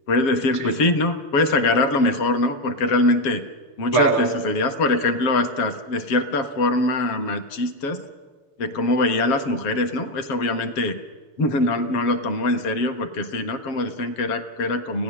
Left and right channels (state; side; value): late; right; 7.4 ms